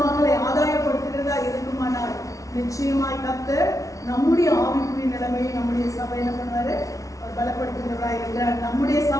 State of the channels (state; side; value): late; right; 0.16 ms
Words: ஆதாயப்படுத்துகிறதா இருக்குமானால் நிச்சயமாய் கர்த்தர் நம்முடைய ஆவிக்குரிய நிலைமையை நம்முடைய சபை என்ன பண்ணுவாரு? அவர் பலப்படுத்துகிறவராய் இருக்கிறார். நம்முடைய